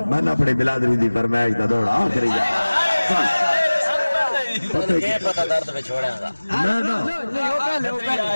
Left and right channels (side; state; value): both; inverted; correlation -1.00